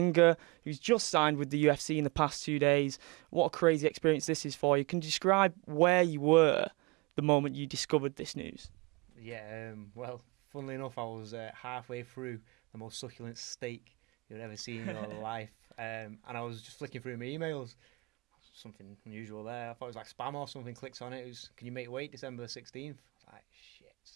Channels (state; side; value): quieter; left; 25.6 dB